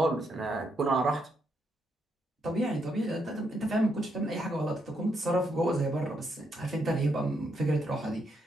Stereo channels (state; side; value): normal; both; correlation 0.78